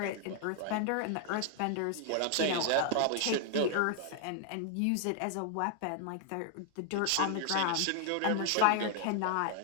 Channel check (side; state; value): both; different; correlation 0.00